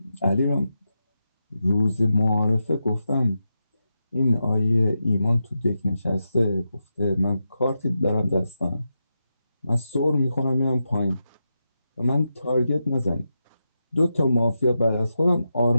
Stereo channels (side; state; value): both; inverted; correlation -0.88